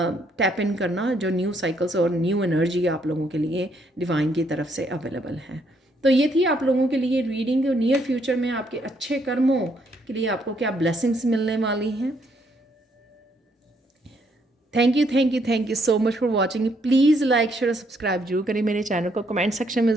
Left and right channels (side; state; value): both; normal; correlation 0.71